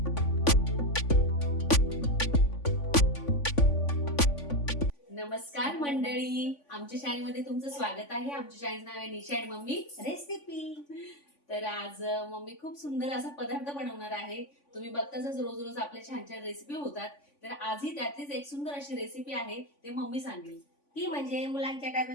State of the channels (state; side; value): late; right; 3.5 ms